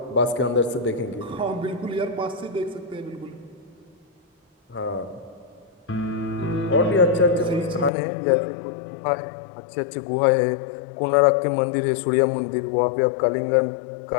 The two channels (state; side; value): drops out; right; at 7.9 s